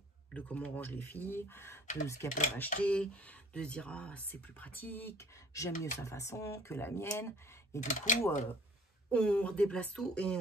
de comment on range les filles, de ce qu'elles peuvent acheter, de se dire, ah, c'est plus pratique, j'aime mieux sa façon que la mienne. Et du coup, on redéplace tout et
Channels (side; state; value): both; normal; correlation 0.52